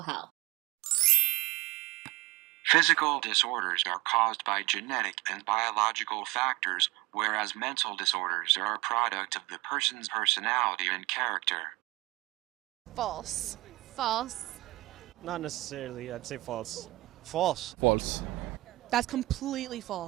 Health. Physical disorders are caused by genetic and biological factors, whereas mental disorders are a product of the person's personality and character. False. False. Not necessarily. I'd say false. False. False. That's completely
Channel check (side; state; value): left; quieter; 20.5 dB